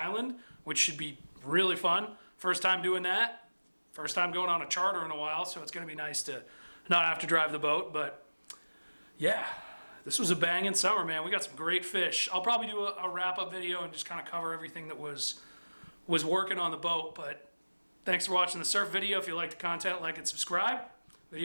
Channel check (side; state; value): both; inverted; correlation -1.00